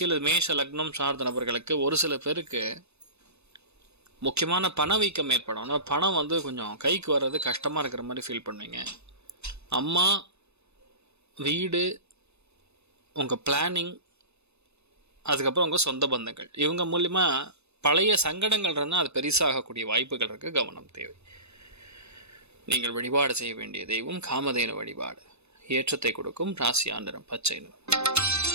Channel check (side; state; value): left; late; 0.80 ms